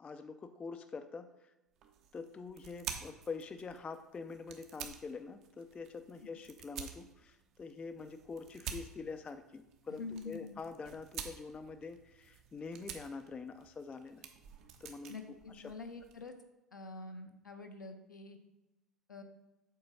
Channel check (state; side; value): normal; both; correlation 0.50